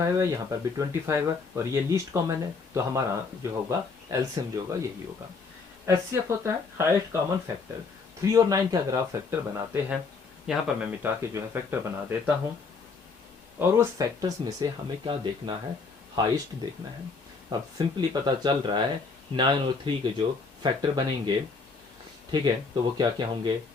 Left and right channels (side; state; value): right; quieter; 4.6 dB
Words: है, यहाँ पर भी 25 है, और ये लीस्ट कॉमन है। तो हमारा जो होगा एलसीएम जो होगा यही होगा। एचसीएफ होता है हाईएस्ट कॉमन फैक्टर। 3 और 9 के अगर आप फैक्टर बनाते हैं, यहाँ पर मैं मिटा के जो है फैक्टर बना देता हूँ, और उस फैक्टर्स में से हमें क्या देखना है, हाईएस्ट देखना है। अब सिंपली पता चल रहा है 9 और 3 के जो फैक्टर बनेंगे, ठीक है, तो वो क्या क्या होंगे,